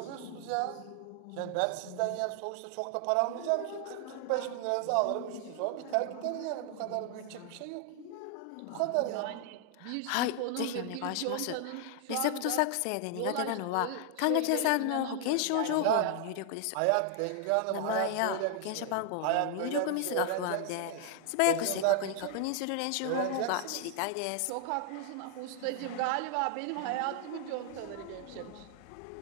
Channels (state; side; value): different; both; correlation 0.00